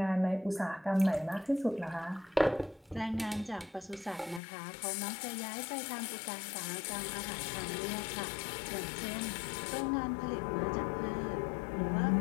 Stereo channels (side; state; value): right; drops out; at 4.4 s